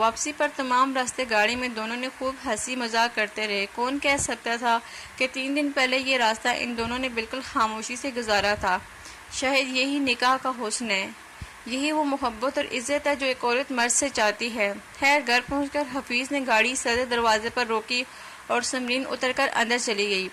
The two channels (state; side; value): identical; both; correlation 1.00